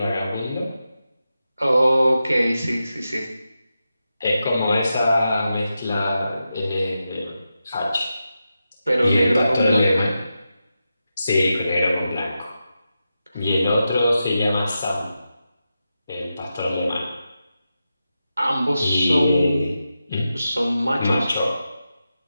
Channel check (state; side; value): inverted; both; correlation -0.90